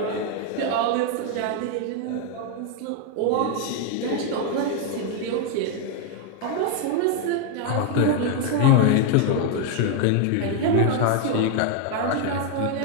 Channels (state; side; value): different; both; correlation 0.01